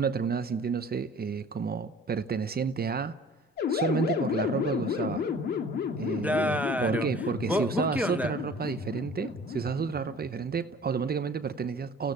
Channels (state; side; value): normal; both; correlation 0.47